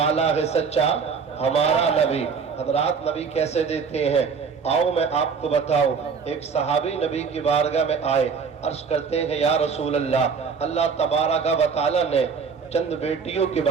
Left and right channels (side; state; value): left; quieter; 5.8 dB